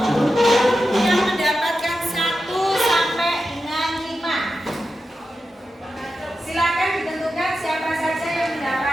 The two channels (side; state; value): both; normal; correlation 0.90